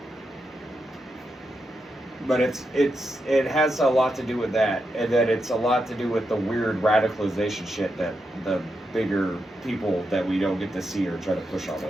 But it has a lot to do with that, and that it's a lot to do with the weird radicalization shit that the bigger people that we don't get to see or try to push on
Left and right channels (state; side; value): normal; both; correlation 0.85